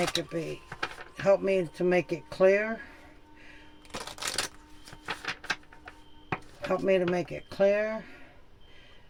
Help me to make it clear. Help me to make it clear.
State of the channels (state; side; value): identical; both; correlation 1.00